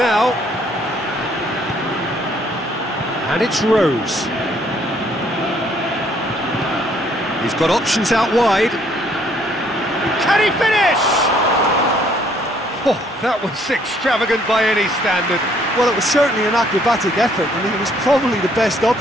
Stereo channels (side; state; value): both; normal; correlation 0.65